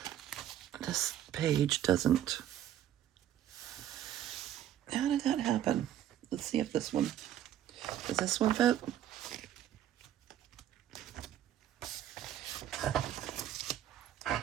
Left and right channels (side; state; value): left; quieter; 11.5 dB